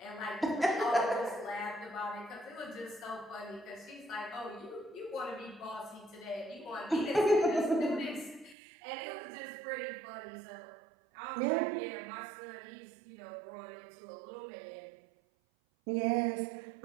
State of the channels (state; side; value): drops out; left; at 8.6 s